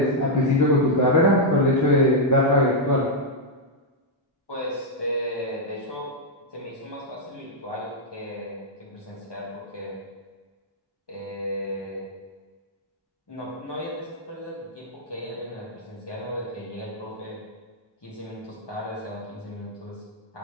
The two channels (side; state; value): both; normal; correlation -0.03